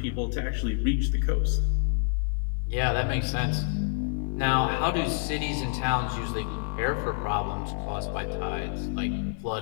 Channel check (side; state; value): right; silent; 59 dB below the other